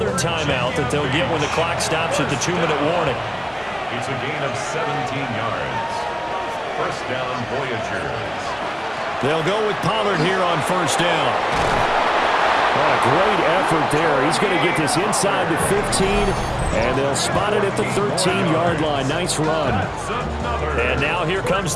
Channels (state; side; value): identical; both; correlation 1.00